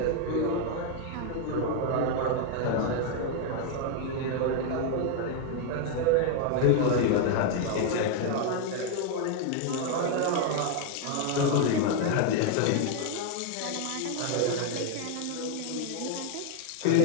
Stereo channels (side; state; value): both; different; correlation 0.00